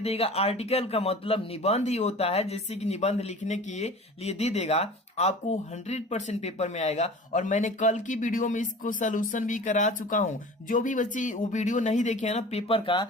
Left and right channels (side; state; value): both; normal; correlation 0.40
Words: आर्टिकल का मतलब निबंध ही होता है, जैसे कि निबंध लिखने के लिए दे देगा। आपको 100% पेपर में आएगा। और मैंने कल की वीडियो में इसको सोल्यूशन भी करा चुका हूं। जो भी बच्चे वो वीडियो नहीं देखे हैं ना पेपर